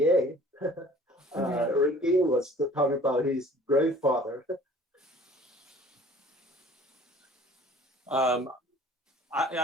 Ricky was talking about his grandfather.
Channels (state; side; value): normal; both; correlation 0.50